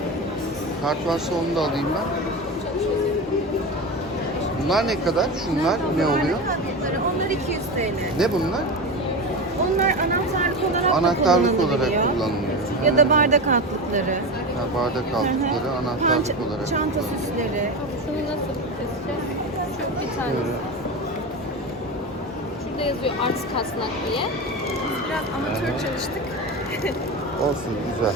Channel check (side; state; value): both; normal; correlation 0.22